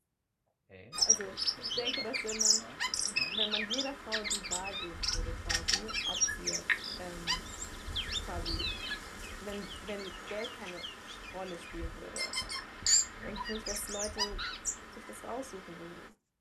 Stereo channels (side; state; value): both; identical; correlation 1.00